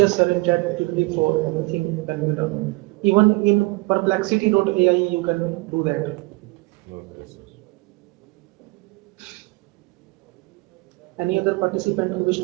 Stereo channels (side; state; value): left; quieter; 25.3 dB